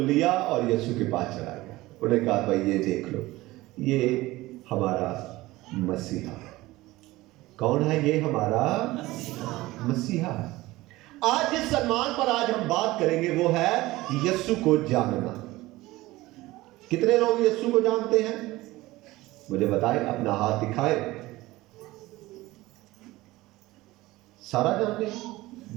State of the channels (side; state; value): left; quieter; 18.8 dB